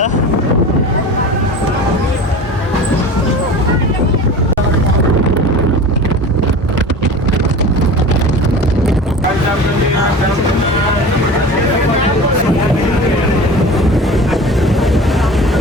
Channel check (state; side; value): normal; both; correlation 0.36